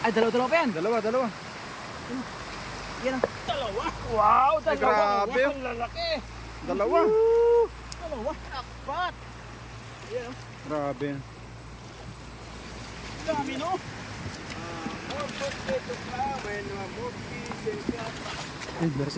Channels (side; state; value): both; identical; correlation 1.00